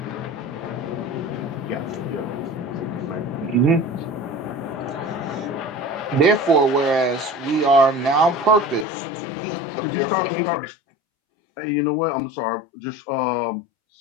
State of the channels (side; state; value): right; drops out; at 8.8 s